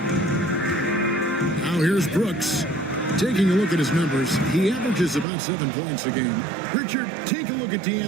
Now here's Brooks. Taking a look at his numbers, he averages about 7 points a game. Richard, take a look at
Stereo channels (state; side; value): drops out; left; at 5.2 s